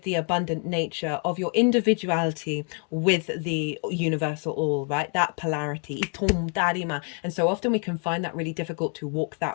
the abundant nature of your individuality with the universal all, right? That polarity. And so often we can find that really difficult to walk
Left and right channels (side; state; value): right; quieter; 38.8 dB